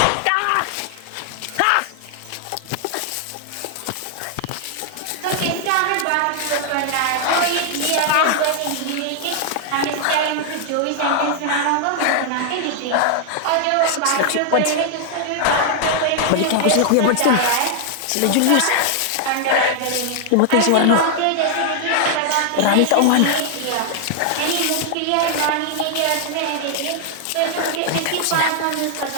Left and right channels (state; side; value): different; both; correlation 0.00